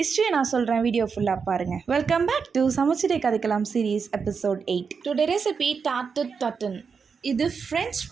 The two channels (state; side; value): quieter; left; 5.7 dB